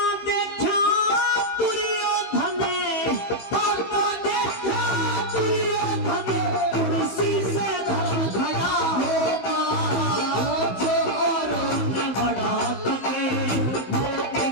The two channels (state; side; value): late; right; 16 ms